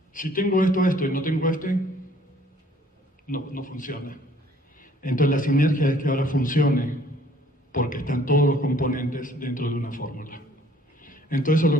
Si tengo esto y no tengo no funciona. Entonces la sinergia es que ahora funcione porque están todos los componentes dentro de una fórmula. Entonces eso es lo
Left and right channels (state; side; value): normal; both; correlation 0.58